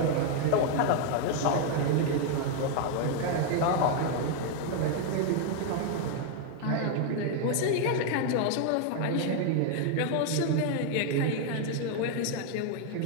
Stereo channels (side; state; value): both; different; correlation 0.00